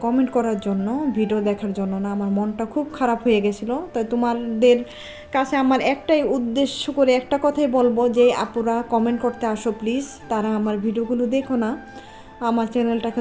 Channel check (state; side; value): identical; both; correlation 1.00